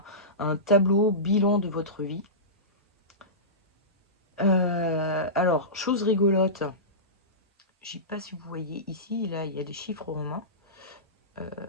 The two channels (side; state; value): both; normal; correlation -0.20